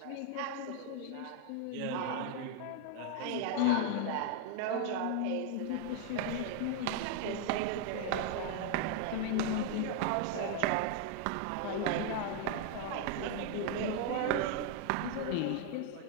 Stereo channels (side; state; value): both; different; correlation 0.00